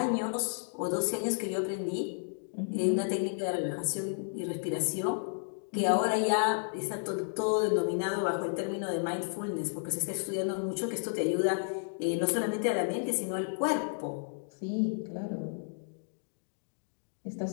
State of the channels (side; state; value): right; silent; digital silence